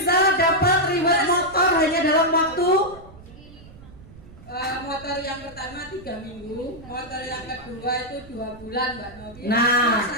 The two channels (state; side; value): noise; right; rumble, 20 dB below the sound